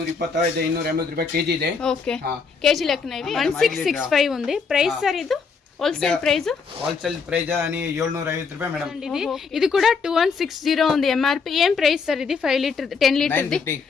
225 280 ರೂಪಾಯಿ ಕೆಜಿ ಇದೆ. ಓಕೆ, ಕೆಜಿ ಲೆಕ್ಕನ ಇವೆ. 1665 ఉంది. ಪ್ರೈಸ್ ಸರ್ ಇದು ಹೋಲ್సేల్ ప్రైస్? ಹೋಲ್సేల్ ಪ್ರೈಸ್ అని 750 ರೂಪಾಯಿ మేడం. ఇది కూడా 2160 ఉంది ఎంఆర్పి. ఏం ప్రైస్ సార్ ఇది? 5 లీటర్ 10 లీటర్ ది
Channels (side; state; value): right; quieter; 5.3 dB